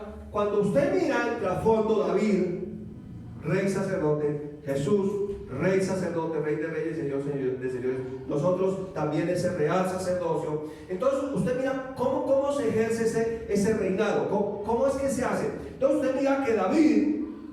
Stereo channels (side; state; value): both; identical; correlation 1.00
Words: cuando usted mira el trasfondo, David, rey sacerdote, Jesús, rey sacerdote, rey de reyes, señor de señores, nosotros también ese real sacerdocio. Entonces usted mira cómo se ejerce ese reinado, cómo es que se hace. Entonces usted mira que David